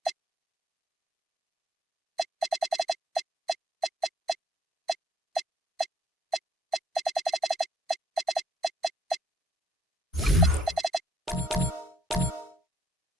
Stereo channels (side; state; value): both; normal; correlation 0.65